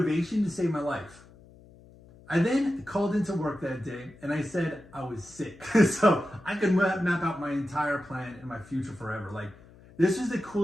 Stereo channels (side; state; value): left; noise; hum, 23 dB below the sound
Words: to save my life. I then called into work that day and I said I was sick. So I could map out my entire plan and my future forever. Like, this is the